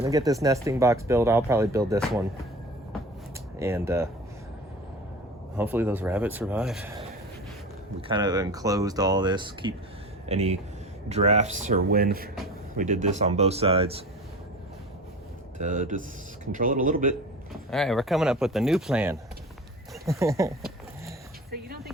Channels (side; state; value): both; normal; correlation 0.35